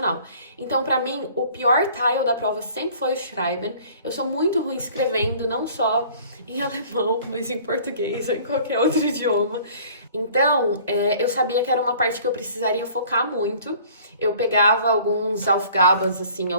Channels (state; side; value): inverted; both; correlation -0.51